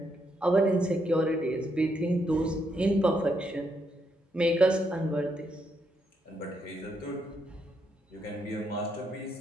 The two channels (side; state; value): both; normal; correlation 0.77